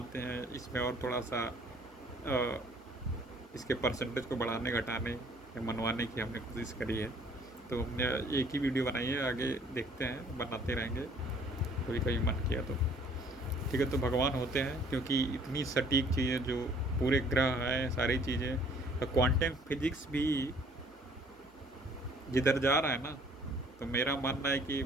हैं, इसमें और थोड़ा सा अ, इसके परसेंटेज को बढ़ाने घटाने या मनवाने की हमने कोशिश करी है। तो हमने एक ही वीडियो बनाई है, आगे देखते हैं, बनाते रहेंगे कभी कभी मन किया तो। ठीक है, तो भगवान होते हैं क्योंकि इतनी सटीक चीज़ें जो पूरे ग्रह हैं, सारी चीज़ें, तो क्वांटम फिजिक्स भी जिधर जा रहा है ना, तो मेरा मानना है कि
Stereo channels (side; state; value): both; normal; correlation 0.58